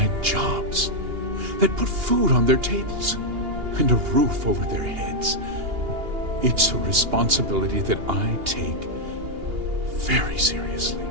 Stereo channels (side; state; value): left; late; 2.8 ms